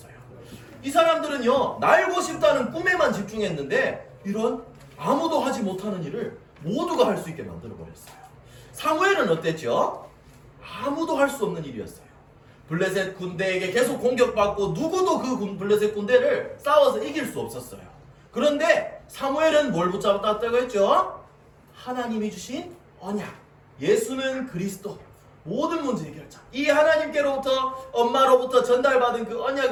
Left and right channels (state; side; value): identical; both; correlation 1.00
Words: 이 사람들은요 날고 싶다는 꿈에만 집중했는데 이런 아무도 하지 못하는 일을 모두가 할 수 있게 만들어버렸어요. 사무엘은 어땠죠? 아무도 할 수 없는 일이었어요. 블레셋 군대에게 계속 공격받고 누구도 그 블레셋 군대를 싸워서 이길 수 없었어요. 그런데 사무엘은 뭘 붙잡았다고 했죠? 하나님이 주신 언약, 예수는 그리스도, 모든 문제 해결자. 이 하나님께로부터 엄마로부터 전달받은 그